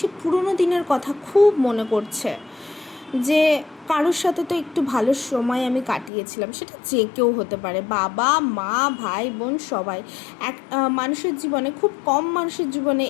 পুরনো দিনের কথা খুব মনে করছে, যে কারোর সাথে তো একটু ভালো সময় আমি কাটিয়েছিলাম। সেটা যে কেউ হতে পারে, বাবা মা ভাই বোন সবাই। এক মানুষের জীবনে খুব কম মানুষের জীবনে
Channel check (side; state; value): right; drops out; at 6.1 s